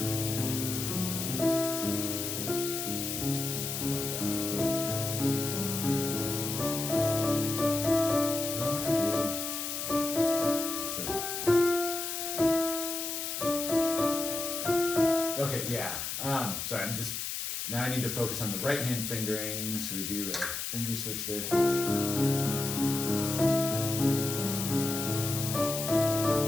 Okay, yeah. Sorry, I'm just now I need to focus on the right hand fingering, so we do a finger switch there.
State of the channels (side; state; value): left; noise; hiss, 4 dB below the sound